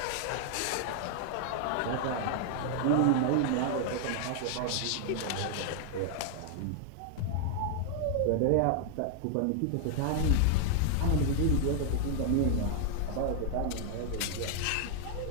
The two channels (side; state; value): both; different; correlation 0.00